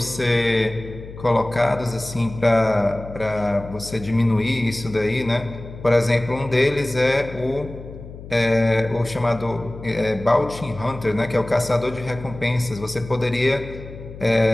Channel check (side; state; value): left; noise; hum, 14 dB below the sound